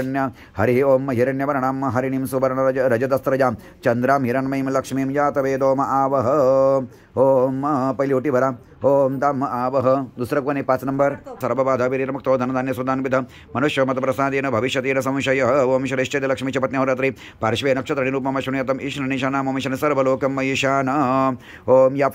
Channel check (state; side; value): identical; both; correlation 1.00